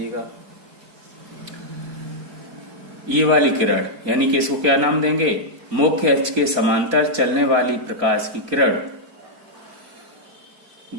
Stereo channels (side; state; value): left; late; 4.3 ms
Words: ये वाली किरण यानी कि इसको क्या नाम देंगे, मुख्य अक्ष के समांतर चलने वाली प्रकाश की किरण